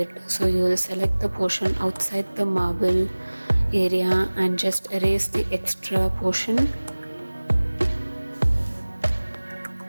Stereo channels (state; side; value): inverted; both; correlation -1.00